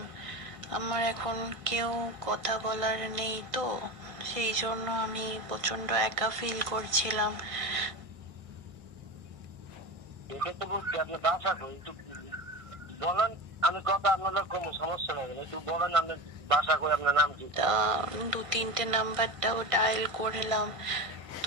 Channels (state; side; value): late; left; 1.6 ms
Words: আমার এখন কেউ কথা বলার নেই, তো সেই জন্য আমি প্রচন্ড একা ফিল করছিলাম। এটা তো বলছি আপনি বাসা কই একটু বলেন। আমি কথা আপনার কোনো সমস্যা নেই, একটু বলেন আপনি বাসা কই, আপনার নাম কি? তা 2-3টে নাম্বারটাও ডায়াল করলাম,